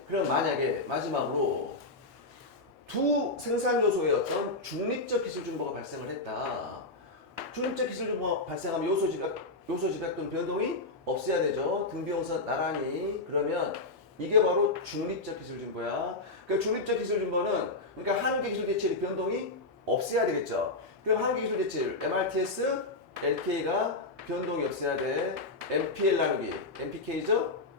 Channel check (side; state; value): right; quieter; 3.1 dB